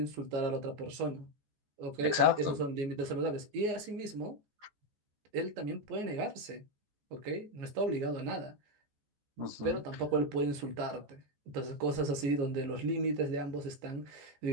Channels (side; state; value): left; late; 14 ms